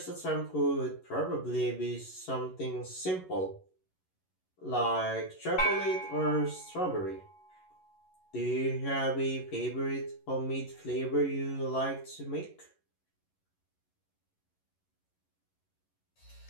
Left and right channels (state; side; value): late; right; 11 ms